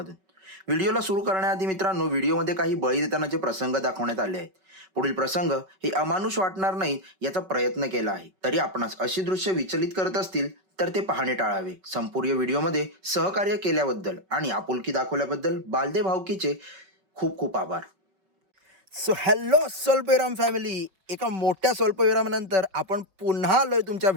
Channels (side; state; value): left; late; 5.3 ms